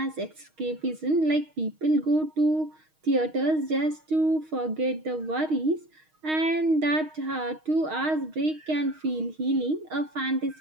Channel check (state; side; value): late; left; 6.4 ms